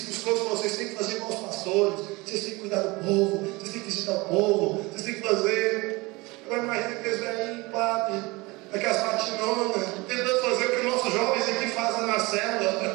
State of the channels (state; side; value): quieter; left; 23.6 dB